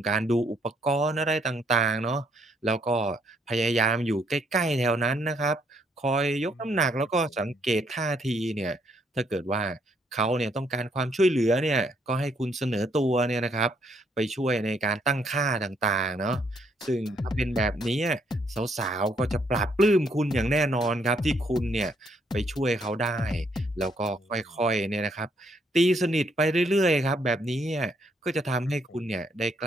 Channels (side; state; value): both; normal; correlation 0.71